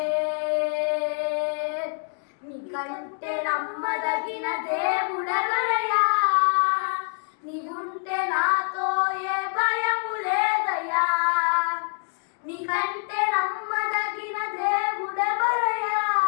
నమ్మదగిన దేవుడెవరయ్యా, నీవుంటే నాతో ఏ భయము లేదయ్యా. నీకంటే నమ్మదగిన దేవుడెవరయ్యా,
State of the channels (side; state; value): right; silent; 61 dB below the other